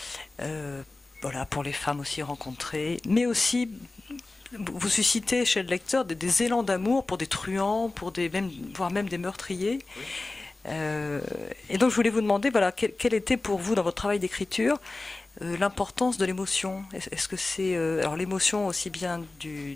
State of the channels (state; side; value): quieter; right; 3.2 dB